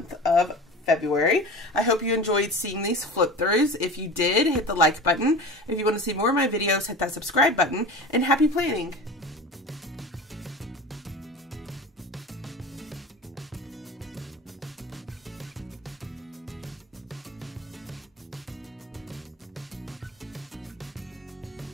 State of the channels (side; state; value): both; normal; correlation 0.34